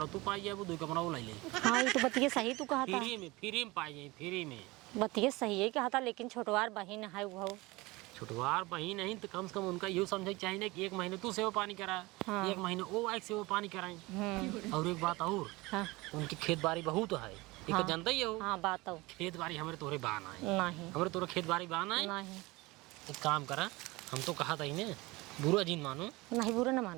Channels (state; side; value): quieter; left; 22.3 dB